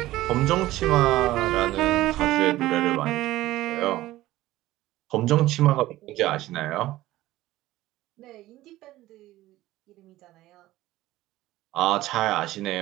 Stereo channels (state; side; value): quieter; left; 16.3 dB